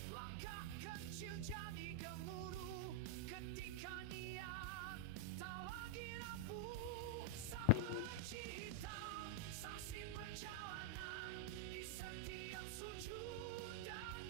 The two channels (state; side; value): different; both; correlation 0.00